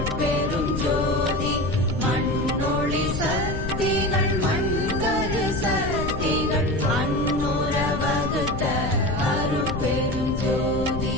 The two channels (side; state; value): left; noise; rumble, 4 dB below the sound